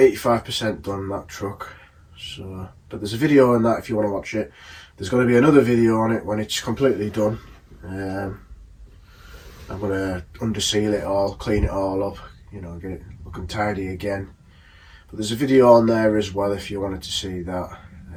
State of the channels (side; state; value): both; identical; correlation 1.00